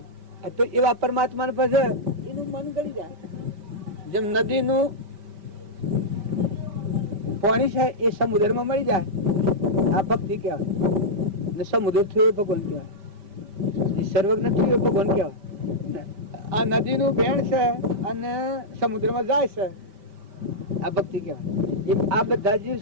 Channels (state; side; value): late; left; 5.1 ms